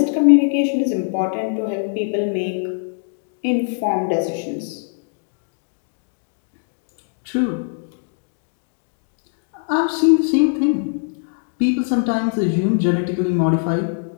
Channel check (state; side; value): silent; right; digital silence